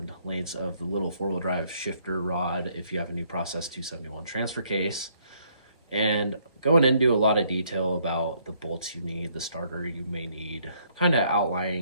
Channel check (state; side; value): inverted; both; correlation -0.67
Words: lengths of the little 4-wheel drive shifter rod if you have a new Process 271 transfer case, and going into a lot of detail about the bolts you need, the starter you may need, kind of